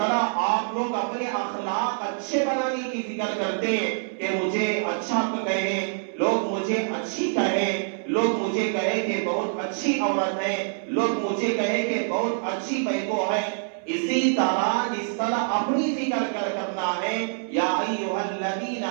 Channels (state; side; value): silent; left; 61 dB below the other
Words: آپ لوگ اپنے اخلاق اچھے بنانے کی فکر کرتے ہیں کہ مجھے اچھا کہیں, لوگ مجھے اچھی کہیں, لوگ مجھے کہیں کہ بہت اچھی عورت ہے, لوگ مجھے کہیں کہ بہت اچھی بہو ہے, اسی طرح جس طرح اپنی فکر کرنا ہے یا ایھا الذین